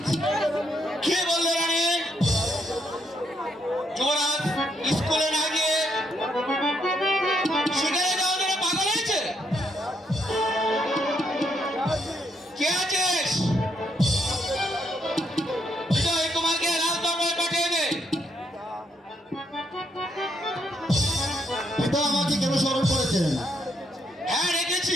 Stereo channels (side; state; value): both; normal; correlation 0.75